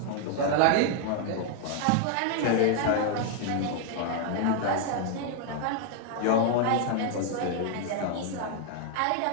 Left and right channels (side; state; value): both; different; correlation 0.00